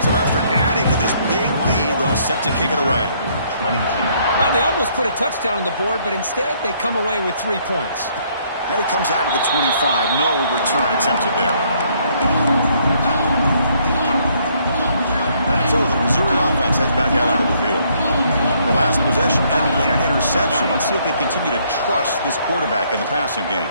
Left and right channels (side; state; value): both; inverted; correlation -0.67